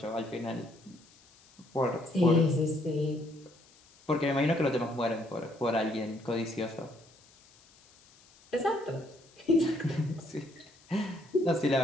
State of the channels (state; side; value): noise; left; hiss, 28 dB below the sound